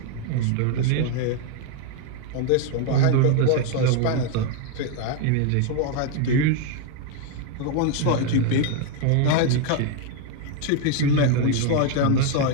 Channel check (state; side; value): different; both; correlation 0.01